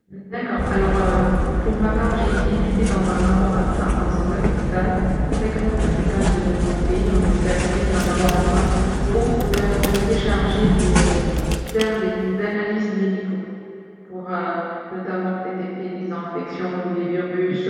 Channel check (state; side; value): identical; both; correlation 1.00